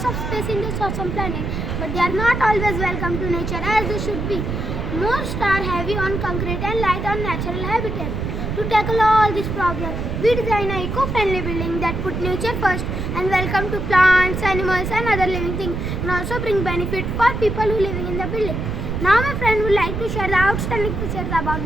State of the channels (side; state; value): right; noise; rumble, 3 dB below the sound